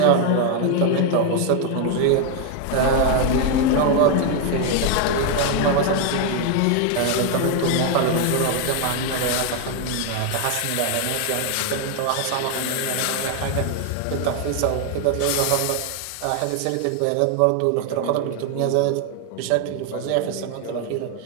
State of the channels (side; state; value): both; different; correlation 0.01